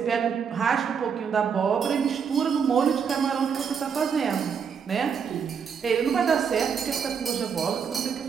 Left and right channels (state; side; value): quieter; left; 6.7 dB